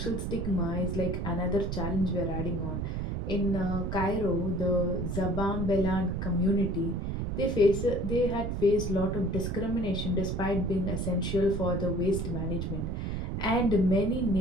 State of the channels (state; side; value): noise; right; rumble, 2 dB below the sound